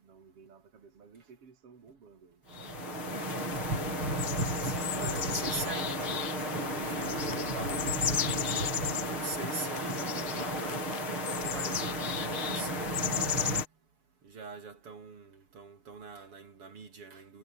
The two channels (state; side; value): late; left; 6.6 ms